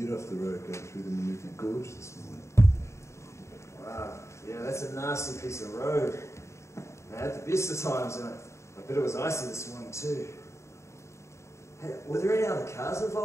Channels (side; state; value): right; late; 0.14 ms